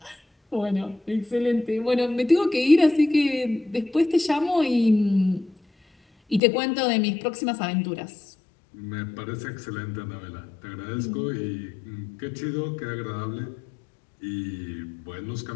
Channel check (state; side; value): drops out; right; at 6.4 s